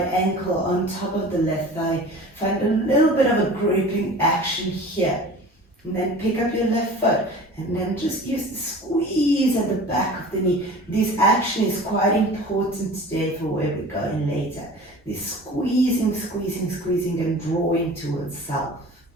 ankle on top of the left thigh. Find a little bit of a gripping action here. And then pick up your left foot. And then just use the squeeze at the back of the knee. This action is quite important today for where we're going later. This squeezing, squeezing, squeezing and drawing towards self.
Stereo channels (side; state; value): both; normal; correlation 0.40